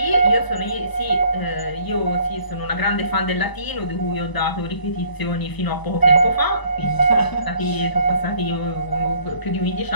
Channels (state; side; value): late; right; 1.0 ms